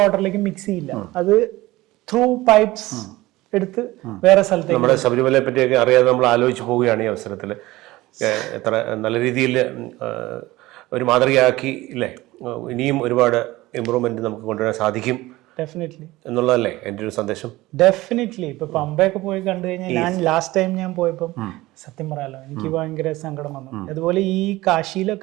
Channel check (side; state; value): left; quieter; 18.6 dB